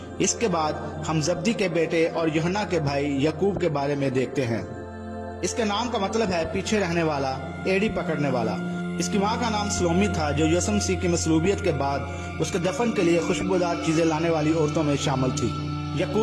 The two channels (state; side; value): identical; both; correlation 1.00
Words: اس کے بعد ہم زبدی کے بیٹے اور یوحنا کے بھائی یعقوب کے بارے میں دیکھتے ہیں۔ اس کے نام کا مطلب ہے پیچھے رہنے والا، ایڑی پکڑنے والا۔ اس کی ماں کا نام سلومی تھا جو یسوع مسیح کی مصلوبیت کے بعد اس کے دفن کے لیے خوشبودار چیزیں لانے والی عورتوں میں شامل تھی۔